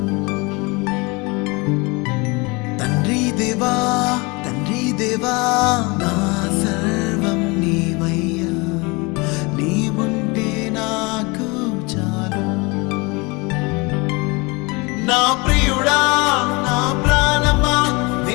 తండ్రి దేవా నా సర్వం నీవయ్యా, నీవుంటే నాకు చాలు. నా ప్రియుడా నా ప్రాణమా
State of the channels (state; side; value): quieter; right; 26.8 dB